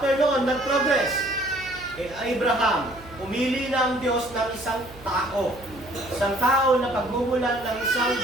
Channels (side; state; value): right; noise; hum, 20 dB below the sound